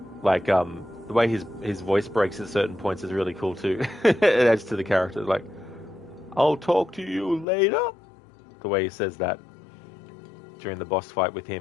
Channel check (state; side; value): drops out; right; at 7.5 s